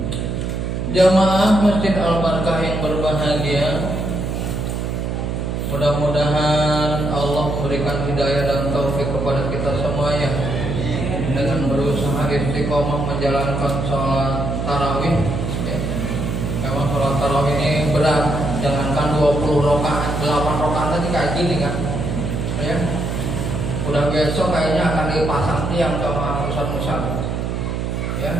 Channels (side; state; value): right; noise; hum, 2 dB below the sound